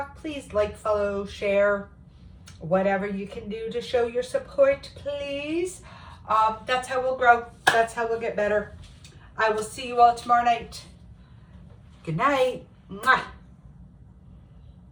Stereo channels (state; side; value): identical; both; correlation 1.00